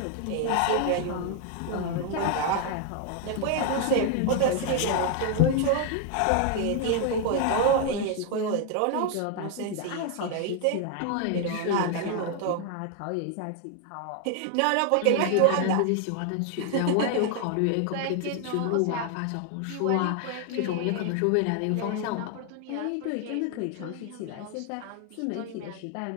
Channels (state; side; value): different; both; correlation 0.01